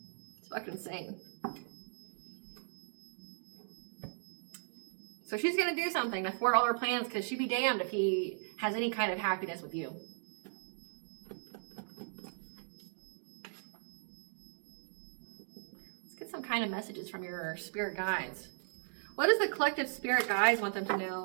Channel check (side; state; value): left; silent; digital silence